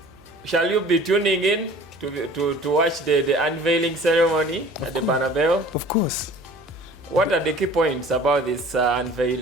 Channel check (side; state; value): right; noise; hum, 28 dB below the sound